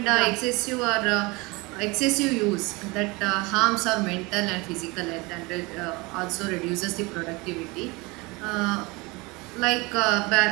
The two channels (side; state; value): left; quieter; 25.2 dB